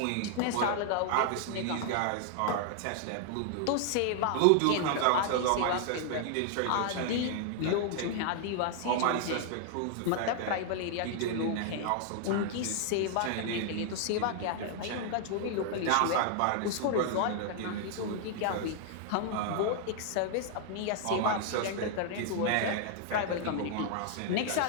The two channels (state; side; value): different; both; correlation 0.00